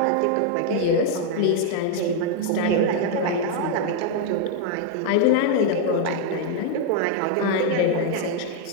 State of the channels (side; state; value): both; different; correlation 0.00